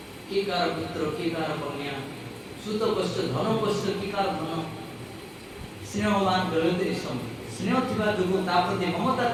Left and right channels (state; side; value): identical; both; correlation 1.00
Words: किए कार पुत्र किए कार कन्या सुत कष्ट धन कष्ट कि कार धन स्नेहवान गलती स्नेह थिबा जो प्रति ममता